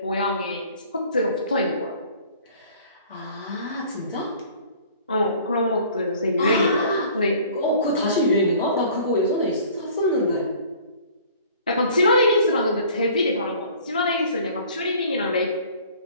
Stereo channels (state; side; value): inverted; both; correlation -0.51